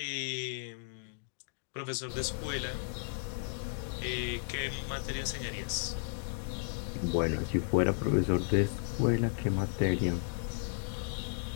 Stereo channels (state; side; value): silent; right; digital silence